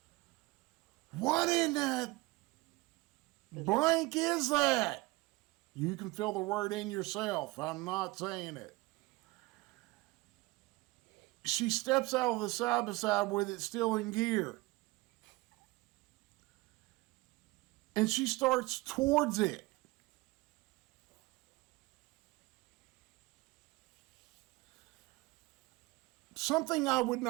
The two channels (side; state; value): left; quieter; 22.0 dB